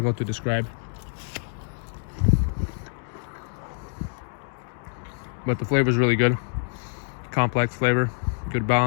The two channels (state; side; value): silent; right; 61 dB below the other